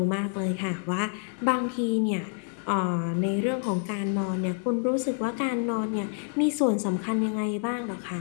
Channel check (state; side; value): silent; right; 60 dB below the other